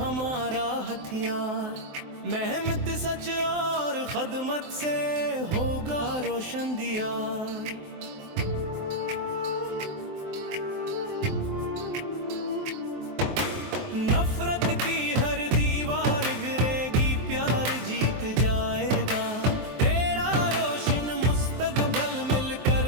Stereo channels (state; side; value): late; left; 23 ms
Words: हथियार। मेहनत सच और खदमत से होगा रोशन दियार। नफरत की हर दीवार गिरेगी प्यार जीत जाएगा। तेरा रोशन मुस्तकबल मिलकर